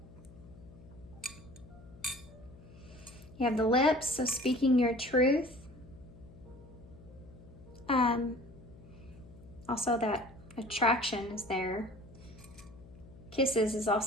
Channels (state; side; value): noise; left; hum, 20 dB below the sound